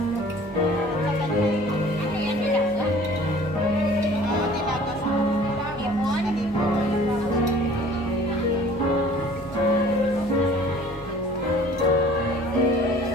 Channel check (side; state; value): both; normal; correlation 0.50